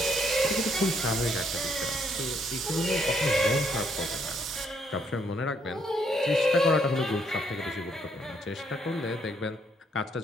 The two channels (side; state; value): both; normal; correlation 0.71